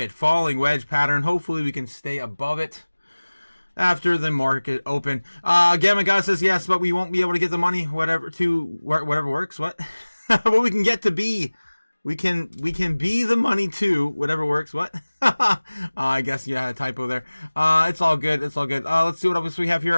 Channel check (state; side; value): inverted; both; correlation -1.00